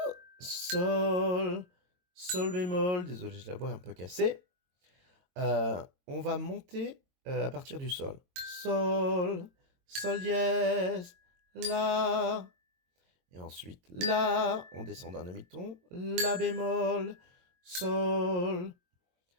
sol, sol bémol. Désolé, j'ai la voix un peu cassée. On va monter à partir du sol. Sol, sol dièse, la. Et ensuite, la, on descend d'un demi-ton. La bémol, sol.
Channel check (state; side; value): late; left; 22 ms